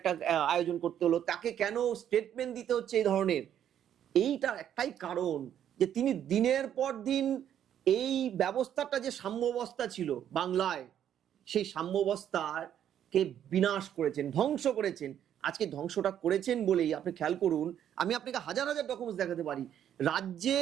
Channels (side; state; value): left; quieter; 10.0 dB